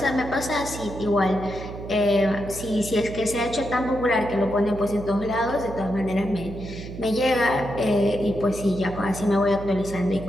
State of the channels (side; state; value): right; noise; hum, 11 dB below the sound